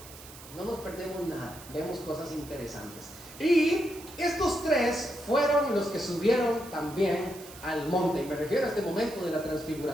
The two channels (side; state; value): right; noise; hiss, 17 dB below the sound